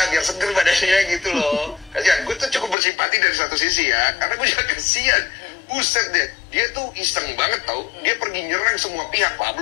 biar seger badannya gitu loh. Kasihan, gue tuh cukup bersimpati dari satu sisi ya, karena gue juga kasihan. Buset deh, dia tuh iseng banget tau. Dia pergi nyerang semua pihak.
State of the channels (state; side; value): drops out; right; at 2.8 s